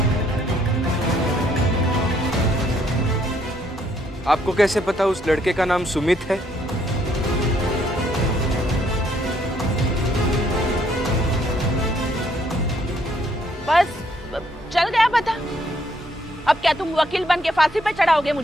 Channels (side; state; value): both; normal; correlation 0.68